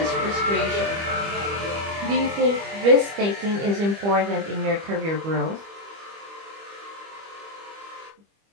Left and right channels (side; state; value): left; late; 25 ms